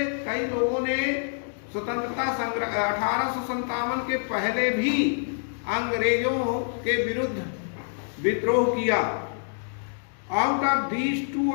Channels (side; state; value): right; silent; digital silence